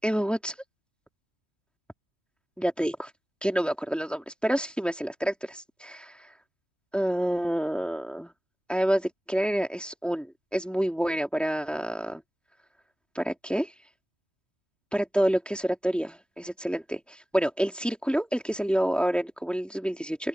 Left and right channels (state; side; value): normal; both; correlation 0.97